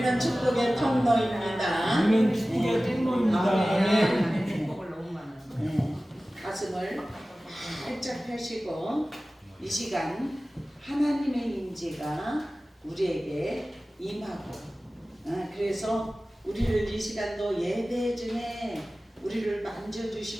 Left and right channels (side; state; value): both; normal; correlation 0.97